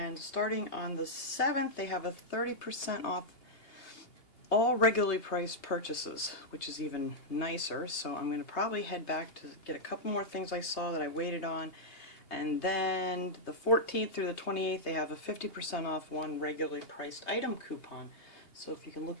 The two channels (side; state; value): right; late; 3.2 ms